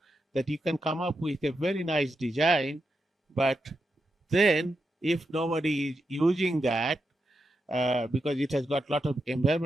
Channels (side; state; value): both; normal; correlation 0.86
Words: that you can come up with a very nice design, but then if nobody is using that because it has got a lot of